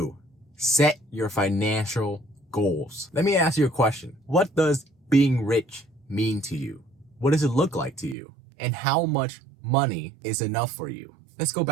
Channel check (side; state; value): left; drops out; at 8.2 s